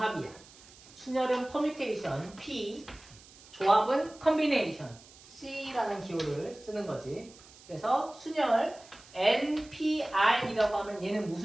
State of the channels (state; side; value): noise; right; hiss, 22 dB below the sound